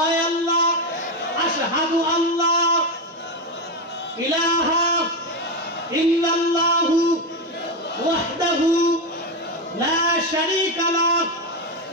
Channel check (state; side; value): normal; both; correlation 0.12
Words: আল্লাহ, আশহাদু আল্লাহ ইলাহা ইল্লাল্লাহু ওয়াহদাহু লা শারীকা লাহ।